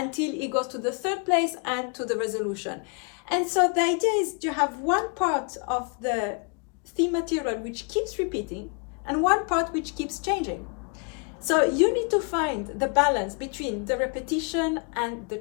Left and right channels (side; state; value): right; quieter; 36.4 dB